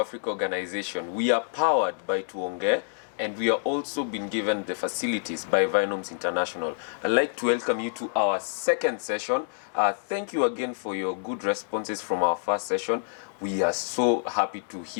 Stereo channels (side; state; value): right; silent; digital silence